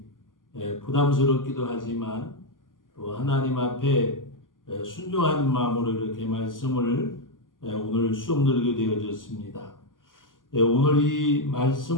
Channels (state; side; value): late; right; 0.90 ms